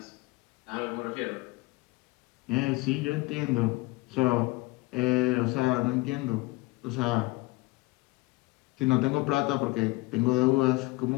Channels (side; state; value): right; quieter; 22.4 dB